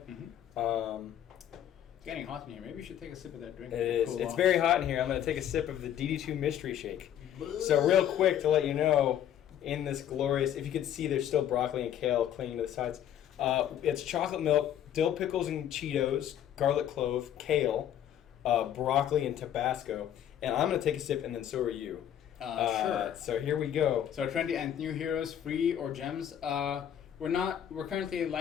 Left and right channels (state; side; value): quieter; right; 10.4 dB